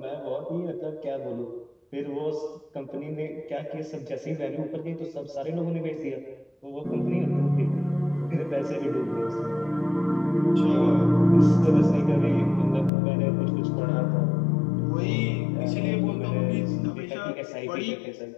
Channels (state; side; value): drops out; right; at 12.9 s